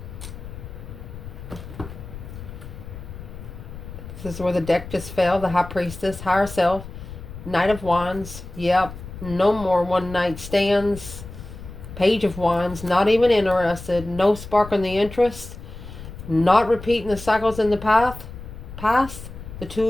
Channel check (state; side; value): noise; left; rumble, 13 dB below the sound